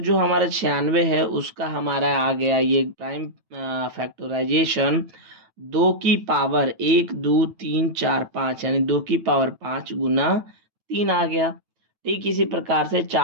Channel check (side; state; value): left; late; 9.0 ms